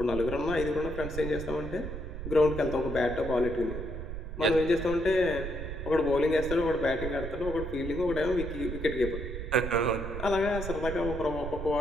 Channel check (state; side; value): noise; right; rumble, 7 dB below the sound